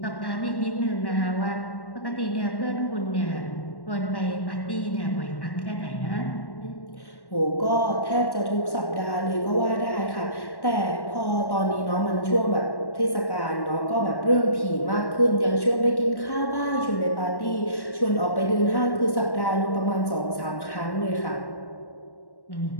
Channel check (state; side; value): late; right; 1.1 ms